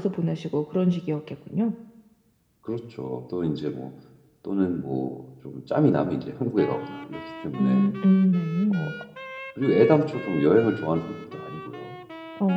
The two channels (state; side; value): identical; both; correlation 1.00